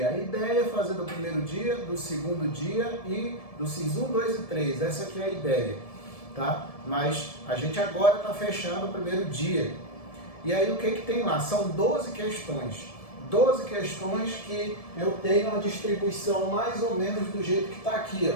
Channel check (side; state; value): right; late; 1.7 ms